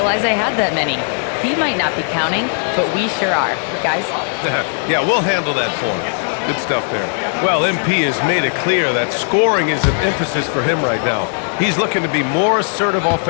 I had that many. He might not be counting, but we sure are. Guys? Yeah, we'll handle that for him. Good stuff there. Well, MP has made it clear that scoring is an emphasis for him right now. He's looking to be more assertive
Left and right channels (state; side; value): silent; right; 60 dB below the other